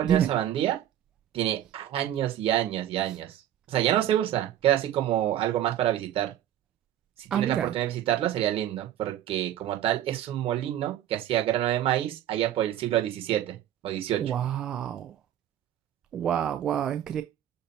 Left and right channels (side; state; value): left; quieter; 11.6 dB